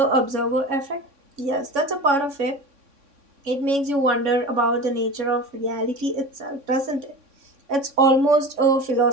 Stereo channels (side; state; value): left; late; 3.6 ms